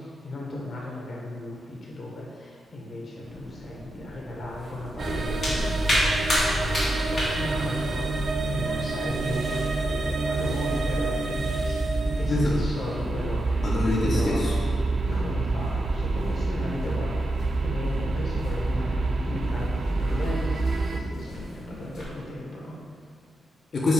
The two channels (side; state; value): both; normal; correlation 0.87